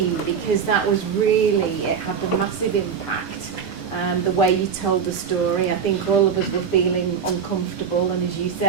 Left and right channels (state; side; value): quieter; left; 6.8 dB